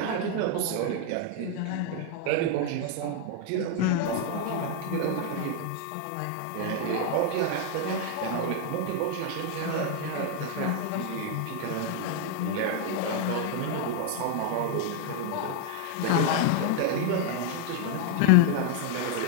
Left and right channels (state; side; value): different; both; correlation 0.00